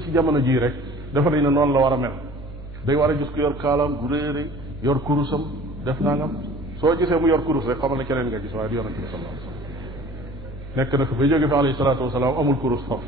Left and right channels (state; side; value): noise; left; hum, 19 dB below the sound